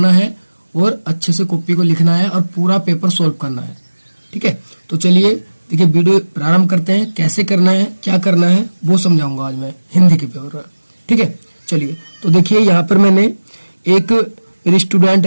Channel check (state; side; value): inverted; both; correlation -1.00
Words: है और अच्छे से कॉपी को लिखना है और पूरा पेपर सोल्व करना है। ठीक है, तो चलिए देखिए वीडियो प्रारंभ करते हैं। कैसे करना है, क्या करना है वो समझाऊंगा आज मैं हिंदी के पेपर में। ठीक है, चलिए तो देखिए यहाँ पर मैंने एक मेरी स्टूडेंट